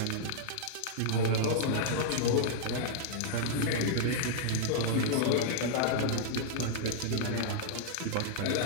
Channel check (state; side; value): different; both; correlation -0.02